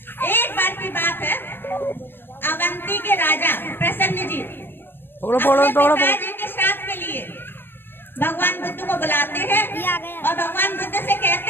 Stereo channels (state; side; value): late; right; 0.099 ms